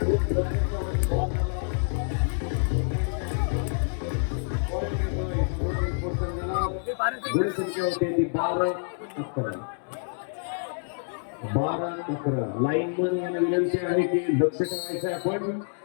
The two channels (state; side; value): silent; right; digital silence